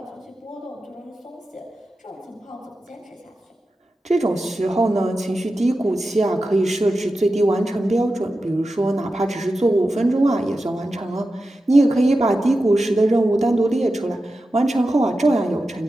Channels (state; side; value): normal; both; correlation 0.92